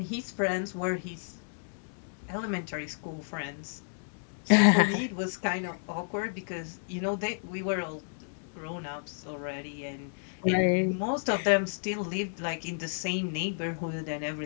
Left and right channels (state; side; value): silent; right; digital silence